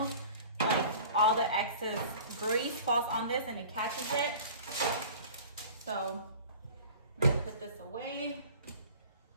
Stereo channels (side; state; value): both; inverted; correlation -0.43